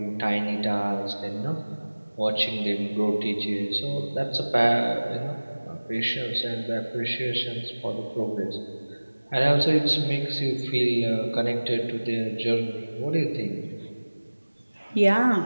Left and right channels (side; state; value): both; inverted; correlation -1.00